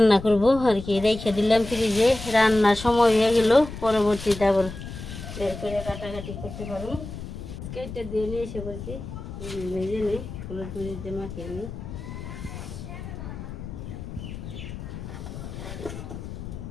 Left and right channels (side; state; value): left; noise; rumble, 10 dB below the sound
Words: করবো আর কি, রেখে দিলাম ফ্রিজে। রান্নার সময় হয়ে গেল, পরবর্তীতে আবার বের করে কাটাকাটি করতে পারবো। কেটে দিয়ে নিয়ে এসে বলছি, ভেজে নিই, হলুদ মরিচ দিয়ে মাখিয়ে নিই।